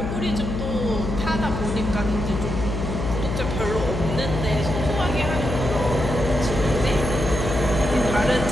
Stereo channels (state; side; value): noise; left; hum, 4 dB below the sound